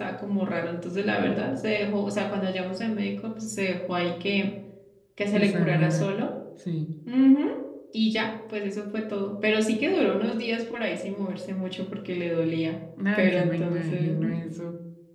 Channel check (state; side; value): identical; both; correlation 1.00